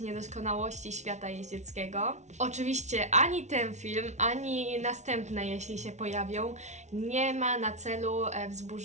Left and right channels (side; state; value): left; late; 0.33 ms